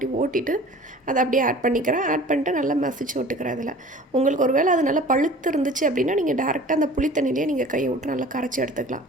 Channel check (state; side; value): normal; both; correlation 0.44